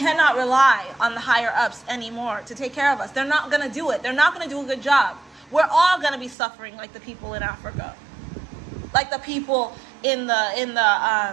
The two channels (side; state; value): left; drops out; at 6.4 s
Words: rely on the higher ups anymore to take care of us. They're not going to do it. They're not going to do a good job. We're all going to be suffering like the people in Africa, like the people in